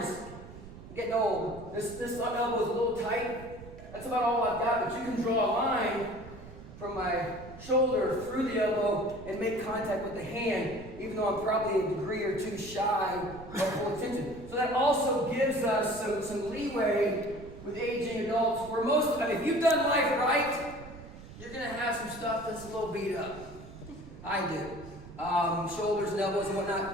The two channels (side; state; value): right; noise; rumble, 15 dB below the sound